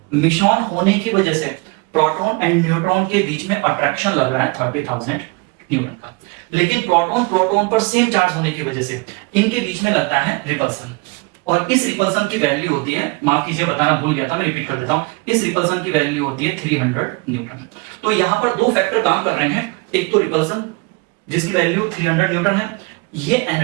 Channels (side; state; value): left; quieter; 28.2 dB